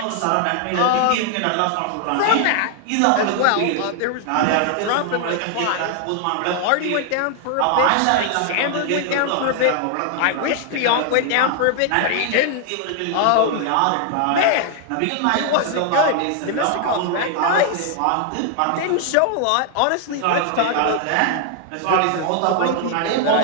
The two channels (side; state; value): both; different; correlation 0.00